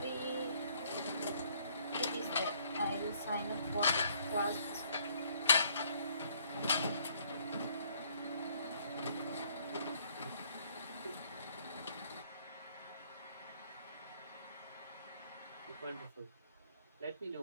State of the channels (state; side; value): inverted; both; correlation -0.64